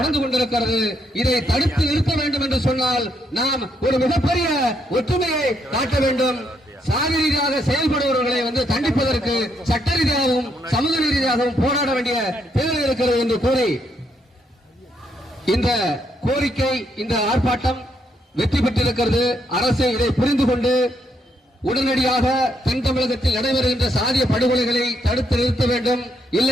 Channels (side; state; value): both; normal; correlation 0.75